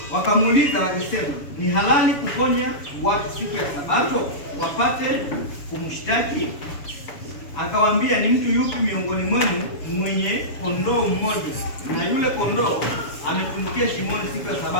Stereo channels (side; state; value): right; late; 7.1 ms